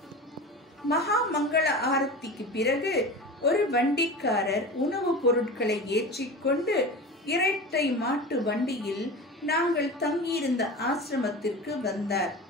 மகா மங்கள ஆரத்திக்கு பிறகு ஒரு வண்டிக்காரர் உணவுப் பொருட்களை ஏற்றிக்கொண்டு இரட்டை மாட்டு வண்டியில் நாங்கள் தங்கியிருந்த ஆசிரமத்திற்கு வந்தார்.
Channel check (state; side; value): normal; both; correlation 0.31